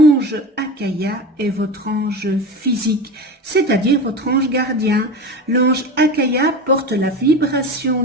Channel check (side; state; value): both; normal; correlation 0.28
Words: Akaya est votre ange physique, c'est-à-dire votre ange gardien. L'ange Akaya porte la vibration